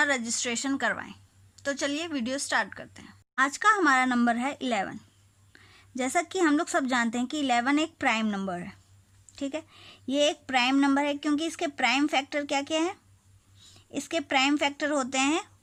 रजिस्ट्रेशन करवाएं। तो चलिए वीडियो स्टार्ट करते हैं। आज का हमारा नंबर है 11। जैसा कि हम लोग सब जानते हैं कि 11 एक प्राइम नंबर है। ठीक है, ये एक प्राइम नंबर है क्योंकि इसके प्राइम फैक्टर क्या क्या है। इसके प्राइम फैक्टर होते हैं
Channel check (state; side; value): identical; both; correlation 1.00